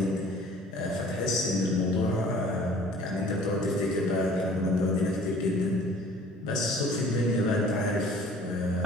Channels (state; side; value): normal; both; correlation 0.51